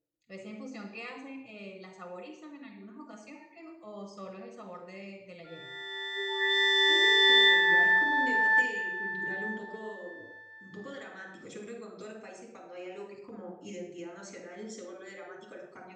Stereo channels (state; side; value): identical; both; correlation 1.00